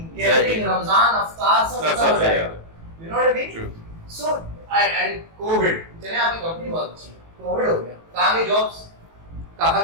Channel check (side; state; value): left; late; 18 ms